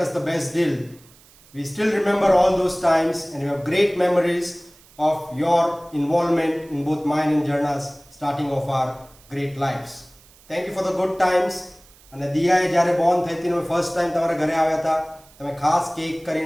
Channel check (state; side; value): noise; right; hiss, 26 dB below the sound